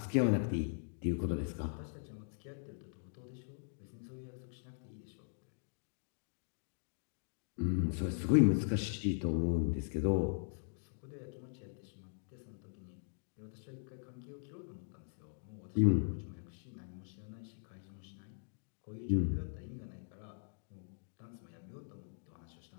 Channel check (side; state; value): right; silent; digital silence